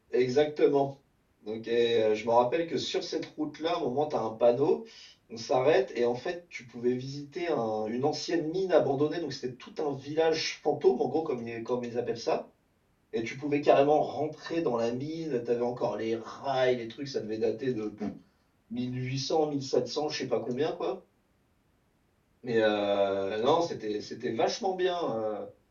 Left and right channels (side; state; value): both; identical; correlation 1.00